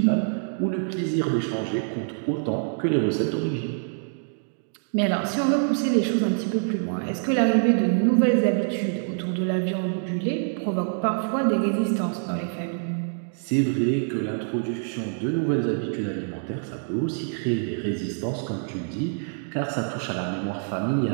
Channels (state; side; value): silent; left; digital silence